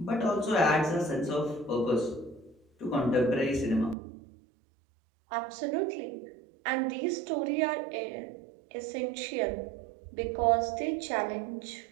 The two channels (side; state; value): left; drops out; at 4.0 s